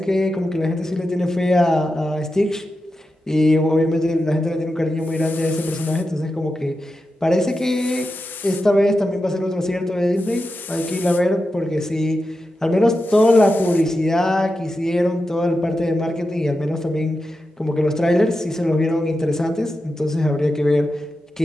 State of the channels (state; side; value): normal; both; correlation 0.90